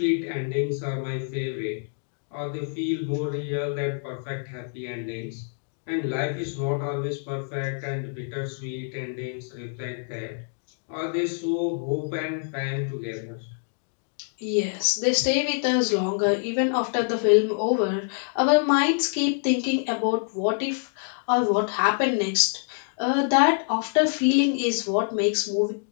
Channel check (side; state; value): right; silent; digital silence